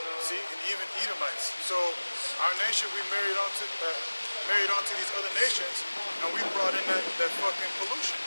See, and even Edomites. So our nation, we married onto these other nations, and we brought in that fucking pollution.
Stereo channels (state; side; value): inverted; both; correlation -1.00